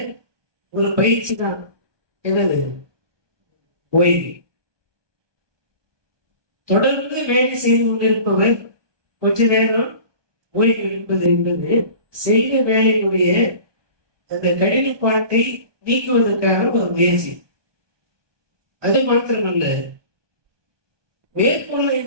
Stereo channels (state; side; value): late; left; 1.2 ms